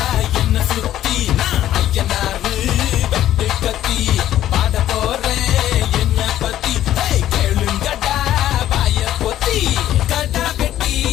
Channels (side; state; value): right; quieter; 12.5 dB